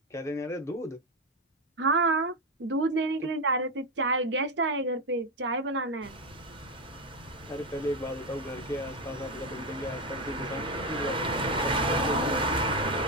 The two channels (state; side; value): normal; both; correlation 0.10